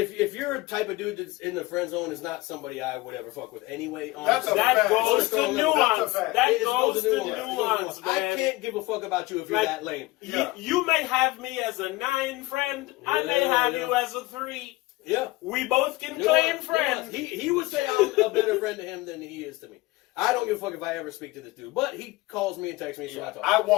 you're a type of dude that's in the friend zone, is not somebody I would ever fuck with anyway. That's a That fact. goes to nuance. That It goes to nuance. nuance, man. I can't give a fuck about you if you're Like, that lame. Yeah. You may have me as a 9 friend. I may Yeah, have yeah. you as a 3. Yeah. We both can claim friends. He would say I'm a better friend to him than he is to me. I don't give a fuck if I ever speak to this dude, but he calls me and texts me, so I talk. I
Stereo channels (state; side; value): quieter; right; 20.3 dB